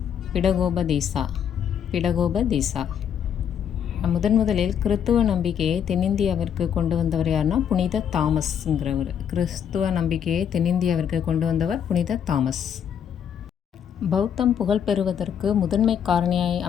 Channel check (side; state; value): right; quieter; 8.5 dB